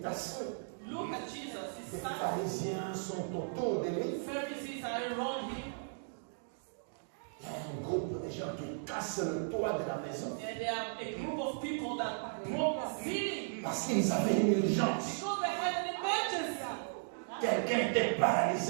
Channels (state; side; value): silent; left; digital silence